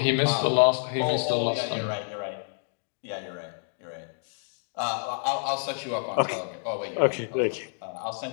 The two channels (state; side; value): silent; right; 59 dB below the other